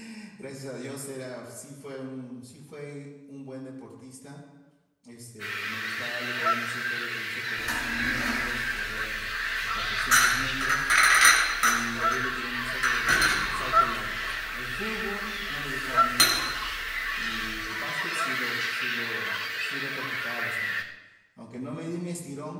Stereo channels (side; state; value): both; identical; correlation 1.00